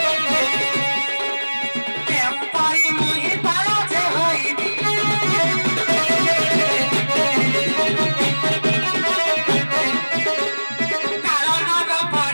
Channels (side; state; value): both; inverted; correlation -1.00